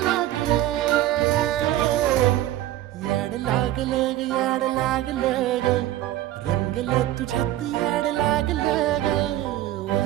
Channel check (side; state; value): left; quieter; 14.0 dB